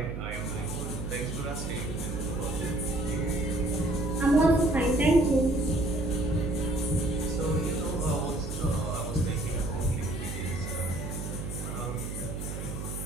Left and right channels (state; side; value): noise; right; hum, 6 dB below the sound